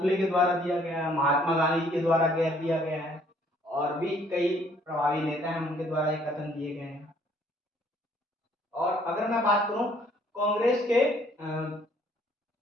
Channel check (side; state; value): both; normal; correlation 0.62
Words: के द्वारा दिया गया है, महात्मा गांधी के द्वारा दिया गया है, और भी कई प्रभावी नेता हैं उनके द्वारा ये कथन दिए गए हैं। और अगर मैं बात करूं कांग्रेस के